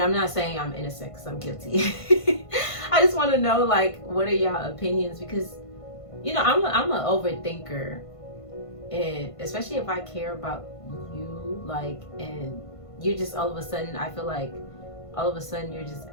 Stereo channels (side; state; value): right; late; 1.5 ms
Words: I'm not saying I'm innocent, because I'm guilty. I just want to know, like, what are y'all opinions? Because, you know, I'm an overthinker, and especially if I care about you, like, and you're just all of a sudden, I feel like all of a sudden you're just